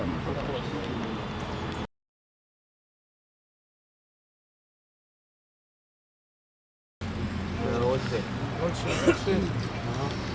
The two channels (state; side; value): identical; both; correlation 1.00